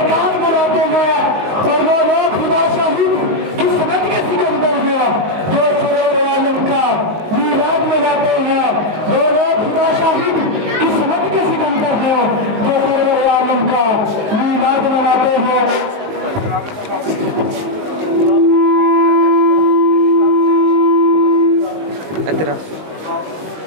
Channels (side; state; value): left; late; 19 ms